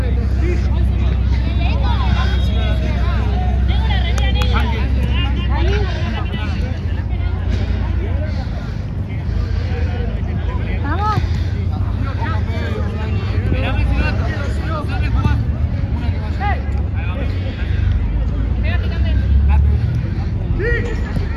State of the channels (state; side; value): identical; both; correlation 1.00